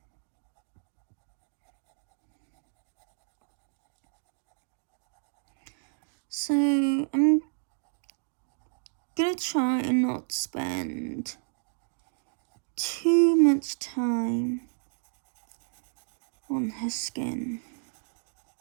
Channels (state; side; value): silent; left; digital silence